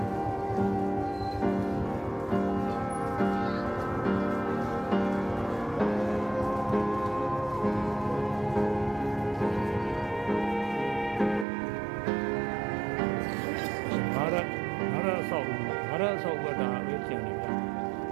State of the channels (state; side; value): drops out; left; at 11.5 s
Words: ငါရဆောက်ဝတ်တာပဲကျန်နေဗျာ